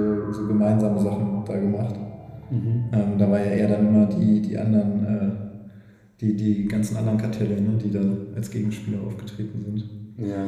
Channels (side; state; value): both; identical; correlation 1.00